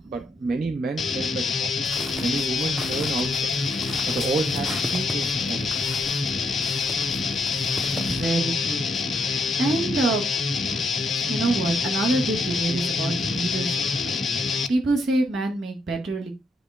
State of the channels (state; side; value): normal; both; correlation 0.76